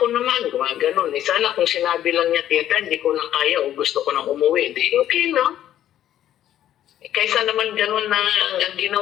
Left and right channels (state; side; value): quieter; right; 11.7 dB